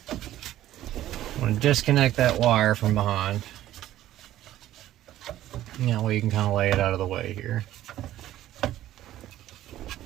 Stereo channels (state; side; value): quieter; left; 13.5 dB